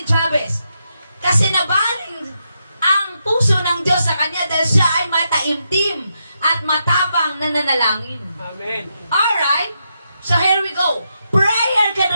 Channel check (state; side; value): inverted; both; correlation -0.83